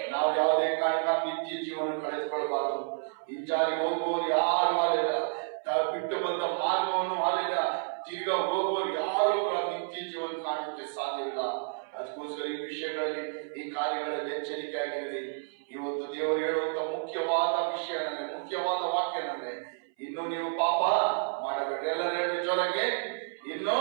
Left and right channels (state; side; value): silent; left; 58 dB below the other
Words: ನಾವು ಯಾವುದೇ ಕಾರಣಕ್ಕೆ ನಿತ್ಯ ಜೀವನ ಕಳೆದುಕೊಳ್ಳಬಾರದು. ಹಿಂಜಾರಿ ಹೋಗುವವರು ಯಾರು ಅಲ್ಲಿಲ್ಲ. ಬಿಟ್ಟು ಬಂದ ಮಾರ್ಗವನ್ನು ಅಲ್ಲಿಲ್ಲ. ತಿರ್ಗಾ ಹೋಗುವವರು ಯಾರು ನಿತ್ಯ ಜೀವನ ಕಾಣಕ್ಕೆ ಸಾಧ್ಯವಿಲ್ಲ. ಅದಕ್ಕೋಸ್ಕರ ಈ ವಿಷಯಗಳಲ್ಲಿ, ಈ ಕಾರ್ಯಗಳಲ್ಲಿ ಎಚ್ಚರಿಕೆ ಆಗಿರಲಿ. ಇವತ್ತು ದೇವರು ಹೇಳುವಂತ ಮುಖ್ಯವಾದ ವಿಷಯ ನನಗೆ, ಮುಖ್ಯವಾದ ವಾಕ್ಯ ನನಗೆ, ಇನ್ನು ನೀವು ಪಾಪ ಮಾಡಬೇಡ್ರಿ. ಎಲ್ಲರೂ ಹೇಳಿ ಜೋರಾಗಿ, ಇನ್ನು